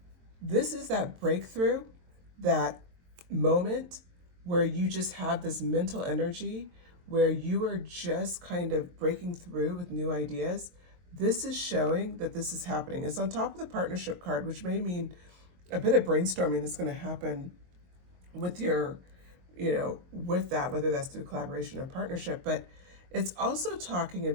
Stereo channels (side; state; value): left; late; 22 ms